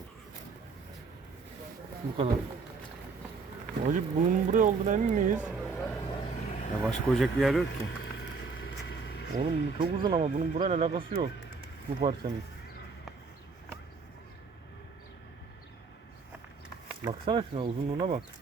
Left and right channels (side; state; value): left; quieter; 4.7 dB